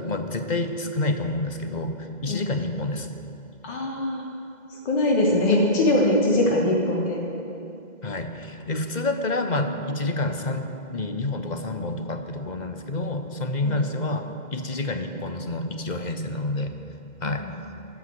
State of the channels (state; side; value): late; right; 2.0 ms